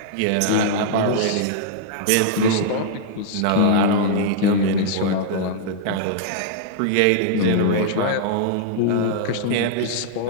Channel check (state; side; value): different; both; correlation -0.01